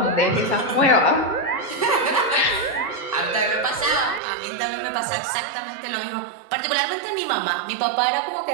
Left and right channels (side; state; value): left; drops out; at 4.2 s